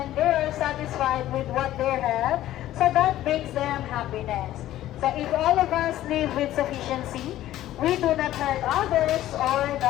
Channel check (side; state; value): right; quieter; 13.8 dB